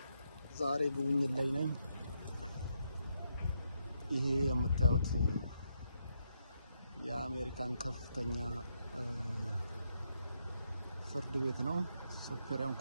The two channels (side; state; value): both; inverted; correlation -0.79